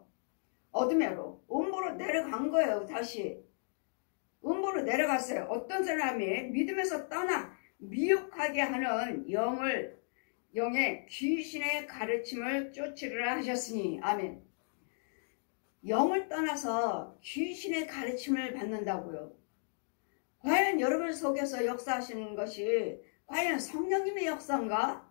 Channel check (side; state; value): right; silent; digital silence